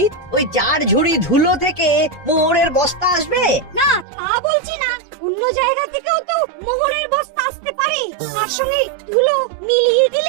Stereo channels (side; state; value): left; drops out; at 4.0 s